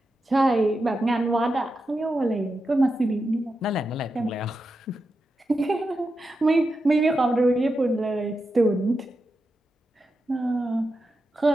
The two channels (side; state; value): both; normal; correlation 0.88